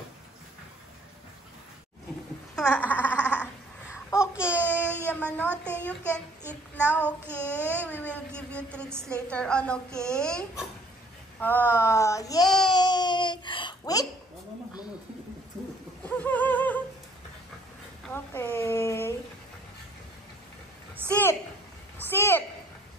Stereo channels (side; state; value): both; normal; correlation 0.58